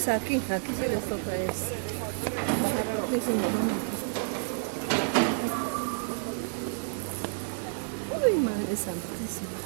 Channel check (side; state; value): left; silent; digital silence